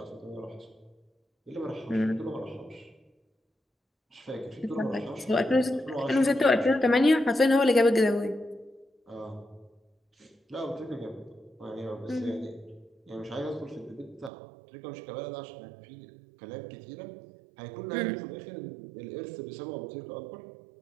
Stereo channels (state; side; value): drops out; left; at 14.3 s